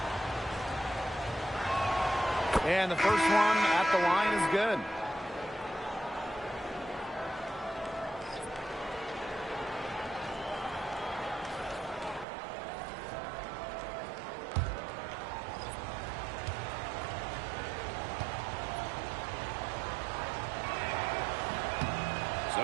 And the first one at the line is good.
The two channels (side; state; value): left; drops out; at 12.2 s